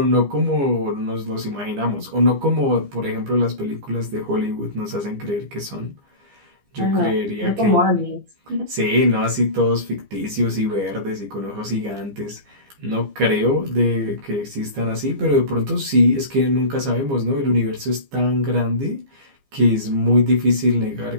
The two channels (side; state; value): left; late; 15 ms